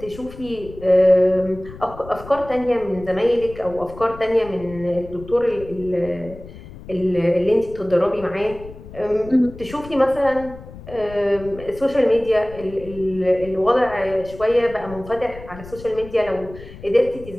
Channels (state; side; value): noise; left; rumble, 16 dB below the sound